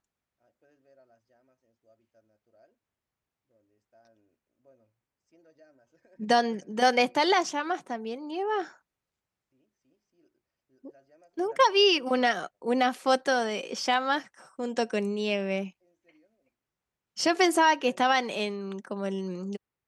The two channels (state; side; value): identical; both; correlation 1.00